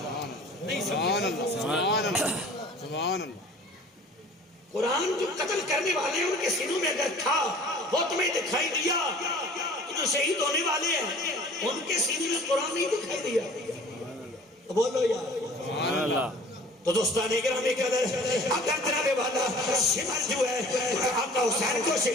سبحان اللہ، سبحان اللہ، سبحان اللہ. قرآن جو قتل کرنے والے ہیں ان کے سینوں میں اگر تھا وہ تمہیں دکھائی دیا، جو شہید ہونے والے ہیں ان کے سینے میں قرآن نہیں دکھائی دیا. بولو یار سبحان اللہ. تو دوستان گرامی قدر اگر جناب والا شمر جو ہے آقا حسین کو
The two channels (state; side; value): normal; both; correlation 0.47